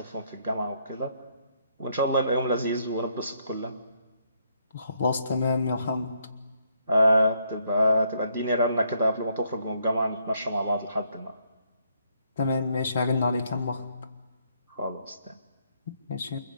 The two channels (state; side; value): inverted; both; correlation -0.72